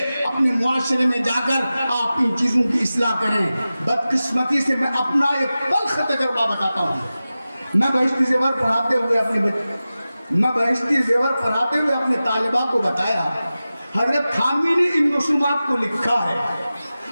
اپنے معاشرے میں جا کر آپ ان چیزوں کی اصلاح کریں۔ بدقسمتی سے میں اپنا ایک تلخ تجربہ بتاتا ہوں۔ میں بہشتی زیور پڑھاتے ہوئے میں بہشتی زیور پڑھاتے ہوئے اپنے طالبہ کو بتایا حضرت تھانوی نے ان رسومات کو لکھا ہے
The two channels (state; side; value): inverted; both; correlation -0.95